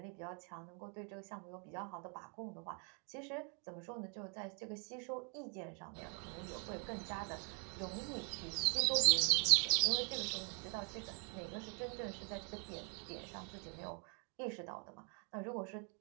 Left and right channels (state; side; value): quieter; left; 39.1 dB